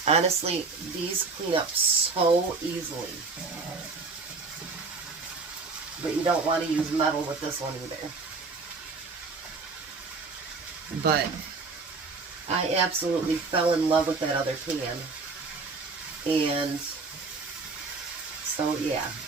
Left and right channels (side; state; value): left; quieter; 4.2 dB